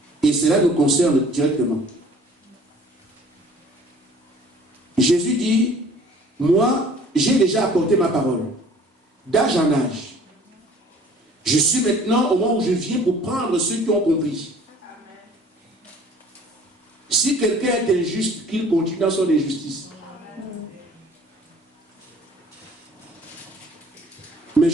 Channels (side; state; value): both; normal; correlation 0.52